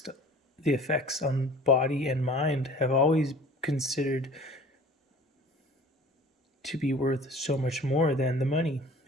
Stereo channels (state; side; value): normal; both; correlation 0.46